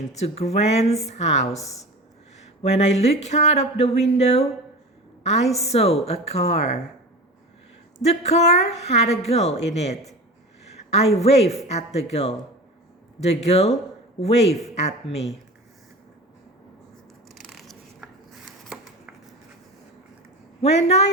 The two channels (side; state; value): both; normal; correlation 0.32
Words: to Grant's house. When I looked out of the window, I saw a car. The car had a girl in it. I waved at the girl. The girl waved at me. When